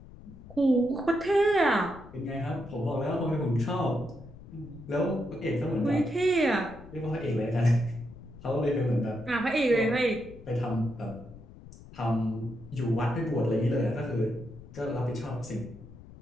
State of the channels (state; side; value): noise; left; rumble, 18 dB below the sound